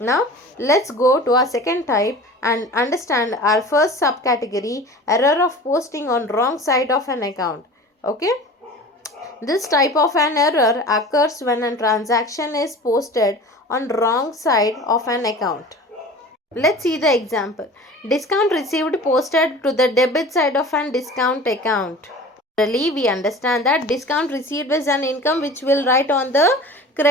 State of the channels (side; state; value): both; normal; correlation 0.39